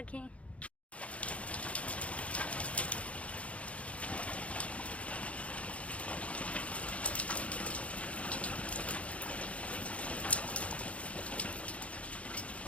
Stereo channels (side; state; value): right; late; 0.064 ms